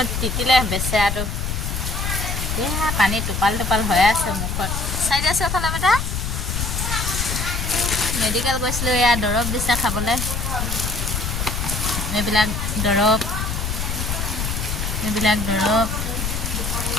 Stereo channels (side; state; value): left; noise; rumble, 2 dB below the sound